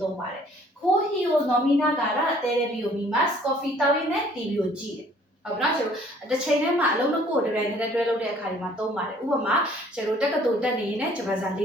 သုံးပါတယ်။ခိုးဟီယိုနော်မီနာဂါရတဲရဘီယိုမီမတ် coffee တောင်းရင်းနဲ့ TV ကိုကြည့်တယ်။ဟုတ်ပြီနော်ကျွန်တော်တစ်ချိန်တည်းမှာအလုံးနှစ်ခုကိုတပြိုင်တည်းတွဲလုပ်တဲ့အခါဒီမှာသုံးပါတယ်။ဥပမာကျွန်တော်တက္ကသိုလ်တက်နေရင်လည်းဂျပန်စာလေ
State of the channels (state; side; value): normal; both; correlation 0.57